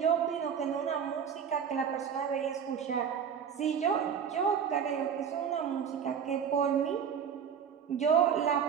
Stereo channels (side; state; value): left; quieter; 7.5 dB